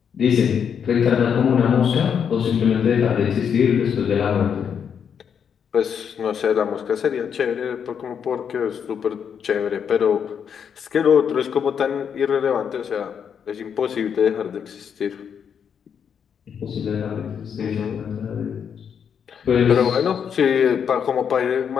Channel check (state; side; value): quieter; right; 7.5 dB